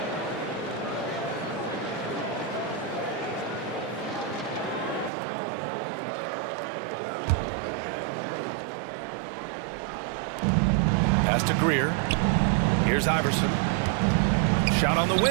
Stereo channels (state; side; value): drops out; left; at 5.1 s